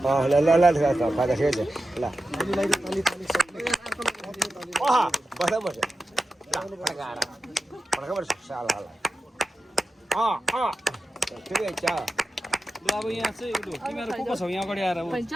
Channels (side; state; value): both; normal; correlation 0.91